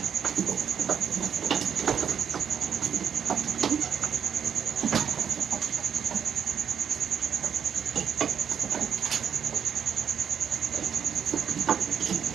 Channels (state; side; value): quieter; left; 7.8 dB